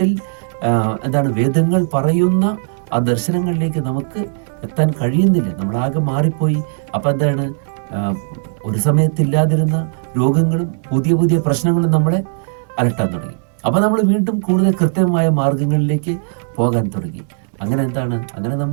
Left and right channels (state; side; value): silent; left; 68 dB below the other